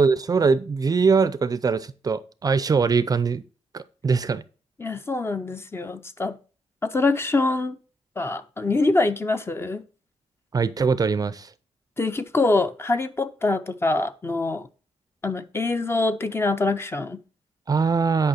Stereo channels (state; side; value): normal; both; correlation 0.77